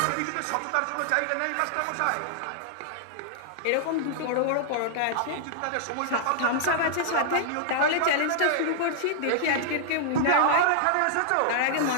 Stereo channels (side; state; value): both; different; correlation -0.01